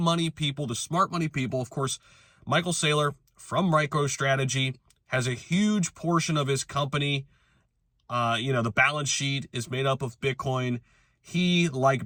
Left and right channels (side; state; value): both; identical; correlation 1.00